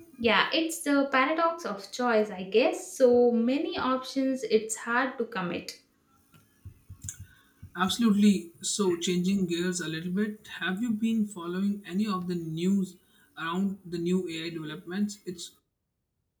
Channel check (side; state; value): both; identical; correlation 1.00